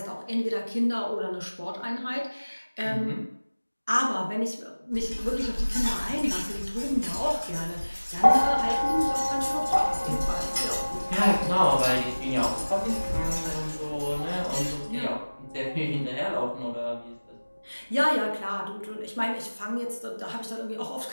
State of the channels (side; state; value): both; inverted; correlation -1.00